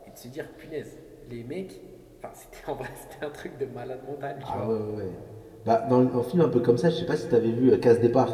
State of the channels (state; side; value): identical; both; correlation 1.00